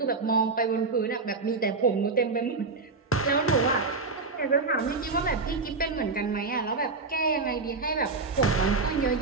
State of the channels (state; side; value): quieter; left; 4.0 dB